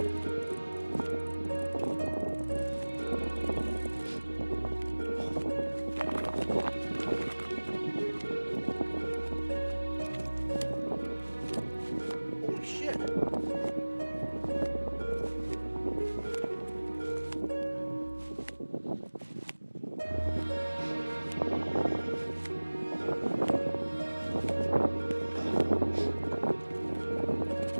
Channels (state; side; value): inverted; both; correlation -1.00